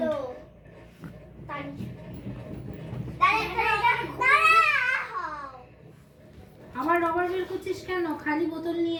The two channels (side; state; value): both; identical; correlation 1.00